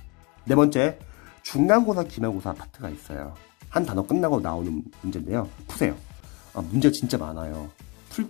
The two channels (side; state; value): right; quieter; 27.8 dB